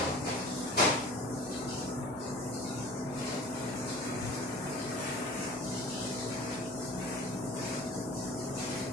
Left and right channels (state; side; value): normal; both; correlation 0.43